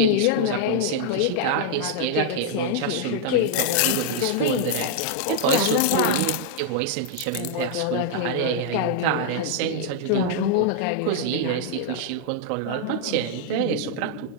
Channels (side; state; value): both; different; correlation -0.01